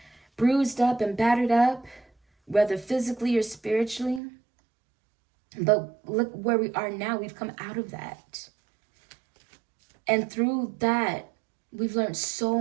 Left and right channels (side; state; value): left; drops out; at 4.2 s